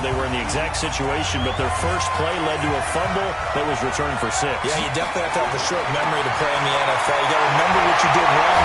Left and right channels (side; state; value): both; identical; correlation 1.00